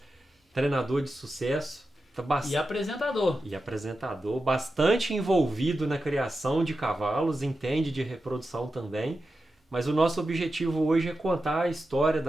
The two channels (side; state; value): both; normal; correlation 0.91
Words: treinador de sucesso. E apresentador. E apresentador, bastante envolvido na criação de cavalos, entende de reprodução também. Mas o nosso objetivo hoje é contar a história